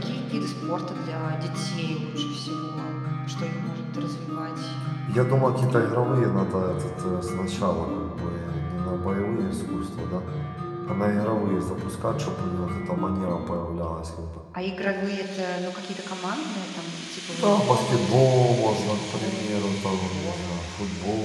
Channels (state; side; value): identical; both; correlation 1.00